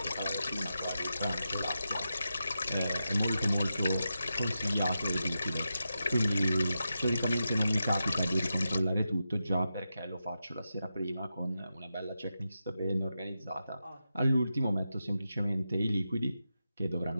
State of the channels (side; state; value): both; inverted; correlation -0.89